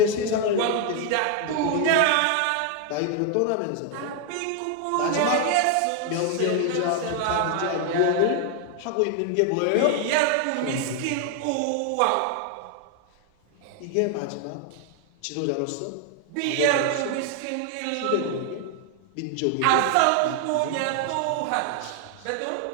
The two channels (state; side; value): different; both; correlation 0.01